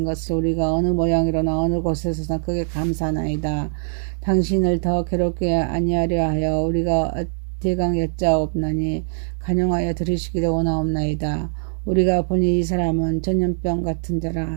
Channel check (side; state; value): left; silent; digital silence